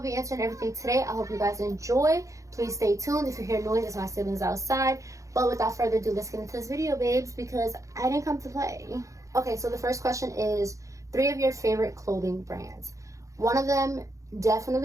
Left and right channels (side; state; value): left; late; 0.15 ms